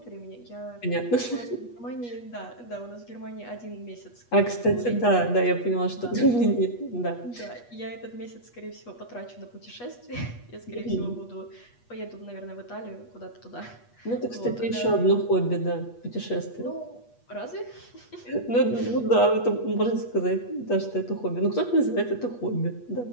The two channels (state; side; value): late; right; 8.3 ms